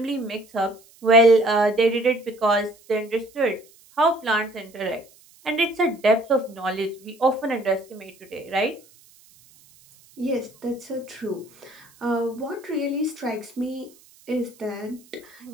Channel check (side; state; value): right; noise; hiss, 27 dB below the sound